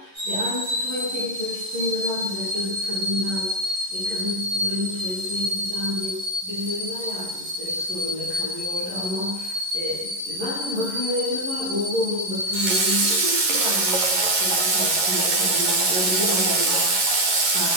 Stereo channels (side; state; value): left; late; 11 ms